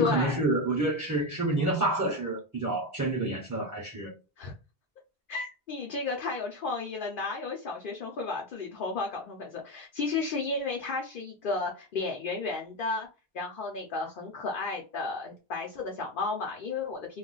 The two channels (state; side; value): normal; both; correlation 0.14